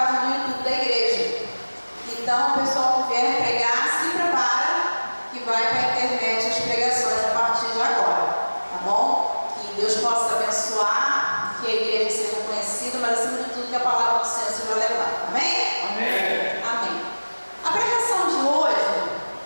do YouTube da igreja. Então, o pessoal que vier pregar, se prepara que vai para a internet as pregações a partir de agora, tá bom? Que Deus possa abençoar, que a igreja seja conhecida, mas acima de tudo que a palavra do Senhor seja levada. Amém? Amém. Amém. A pregação de hoje,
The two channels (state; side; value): inverted; both; correlation -1.00